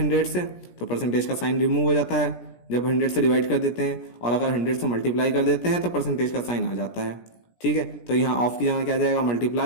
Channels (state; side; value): late; right; 17 ms